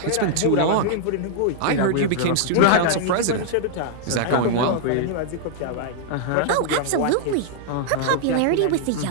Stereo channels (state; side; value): different; both; correlation -0.01